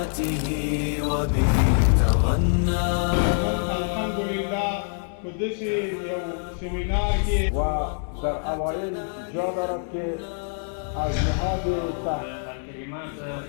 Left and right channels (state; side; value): silent; right; 60 dB below the other